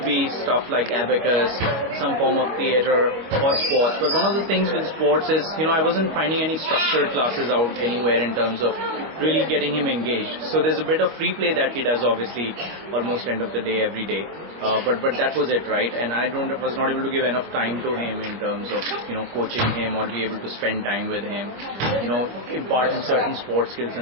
be stuff like abacus, some form of theatre or sports. But one of the things with sports is, I wasn't finding any structured classes out anywhere in terms of really getting him engaged. So there's a bit of free play that he does, obviously, almost end of the day, every day. But that was it, right? And I was not able to give enough time to him in terms of, coaching him or be able to spend time with him, impart him certain sports skills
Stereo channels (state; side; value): late; left; 25 ms